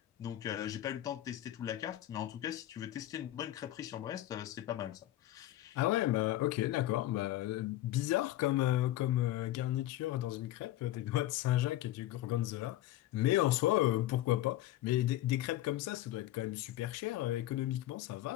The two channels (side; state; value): right; quieter; 14.5 dB